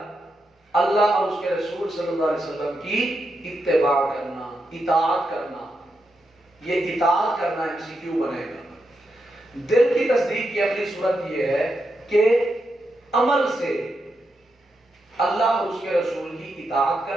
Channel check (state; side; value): normal; both; correlation 0.85